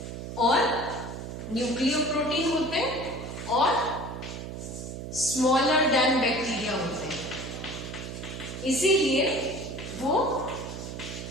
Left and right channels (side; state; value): right; noise; hum, 8 dB below the sound